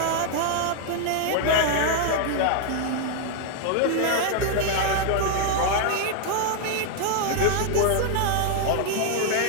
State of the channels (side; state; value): both; different; correlation 0.00